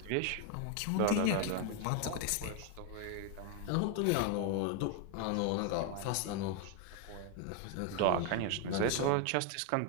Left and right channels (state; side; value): different; both; correlation 0.00